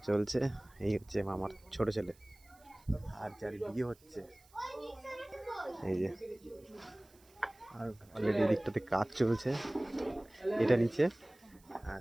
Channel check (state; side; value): noise; right; hiss, 28 dB below the sound